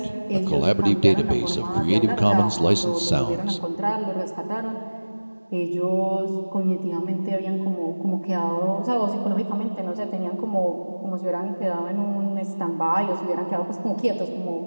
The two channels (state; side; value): inverted; both; correlation -1.00